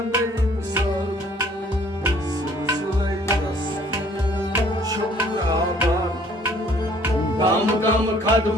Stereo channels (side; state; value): both; normal; correlation 0.58